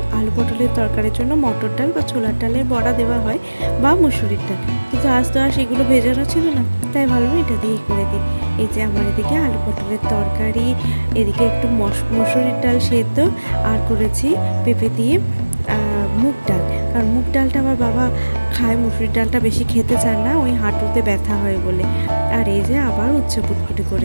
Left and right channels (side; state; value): both; inverted; correlation -1.00